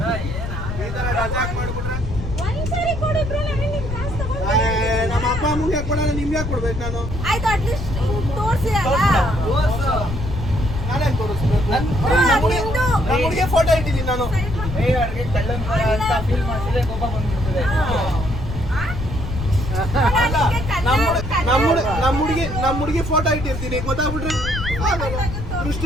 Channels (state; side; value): noise; left; rumble, 6 dB below the sound